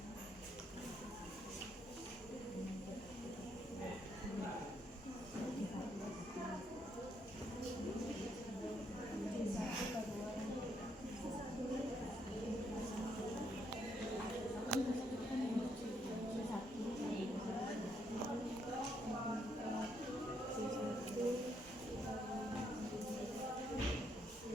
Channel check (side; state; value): both; normal; correlation 0.74